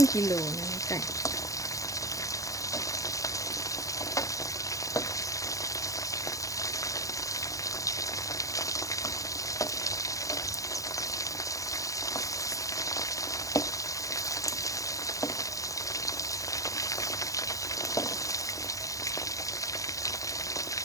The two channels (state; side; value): late; right; 0.16 ms